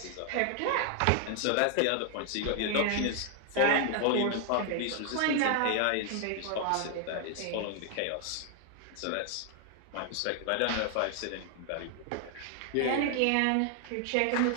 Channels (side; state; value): both; different; correlation 0.00